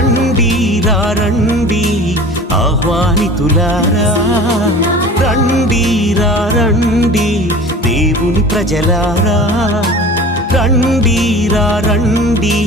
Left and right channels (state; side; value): normal; both; correlation 0.40